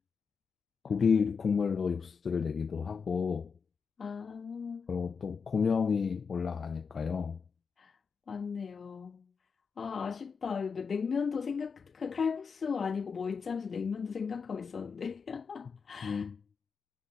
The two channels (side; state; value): right; quieter; 5.6 dB